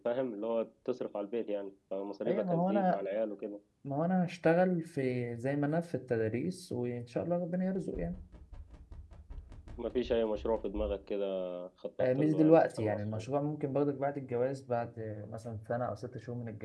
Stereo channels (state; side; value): identical; both; correlation 1.00